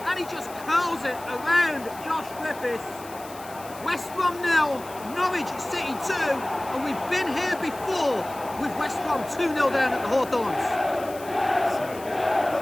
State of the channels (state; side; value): noise; left; hiss, 18 dB below the sound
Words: and he just curls it around Josh Griffiths. West Brom 0, Norwich City 2, and we've been here before with West Brom 2-0 down at the Hawthorns.